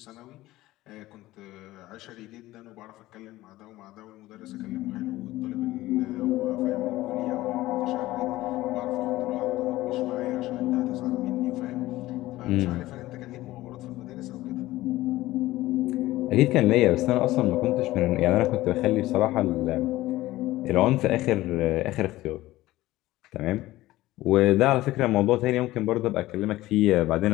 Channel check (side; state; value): right; quieter; 16.9 dB